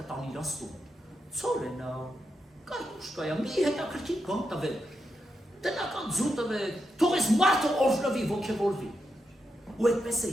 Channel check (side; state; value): both; normal; correlation 0.85